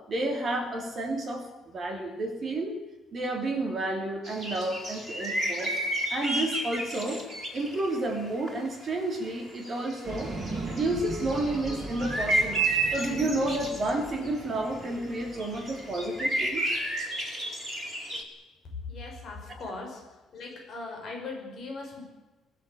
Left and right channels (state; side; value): normal; both; correlation 0.67